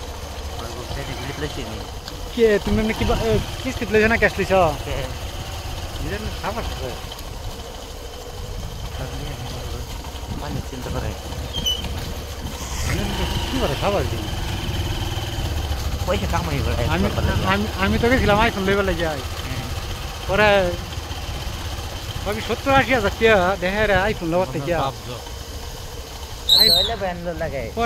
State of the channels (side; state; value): both; identical; correlation 1.00